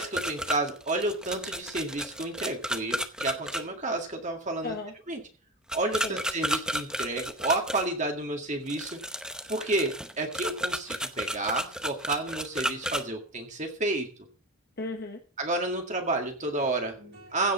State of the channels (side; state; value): both; normal; correlation 0.23